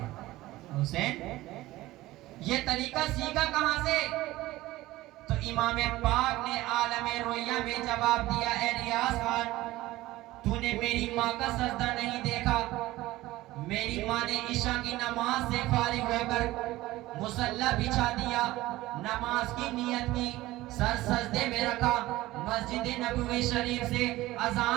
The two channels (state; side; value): quieter; left; 17.5 dB